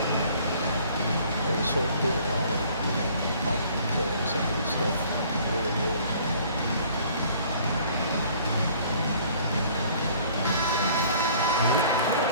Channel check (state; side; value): inverted; both; correlation -0.55